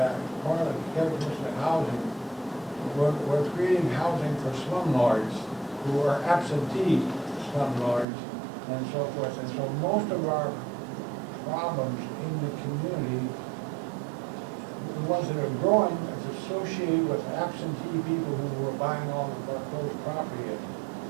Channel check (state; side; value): drops out; left; at 8.1 s